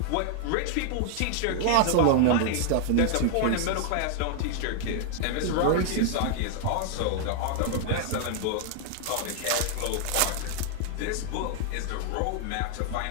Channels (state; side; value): different; both; correlation 0.00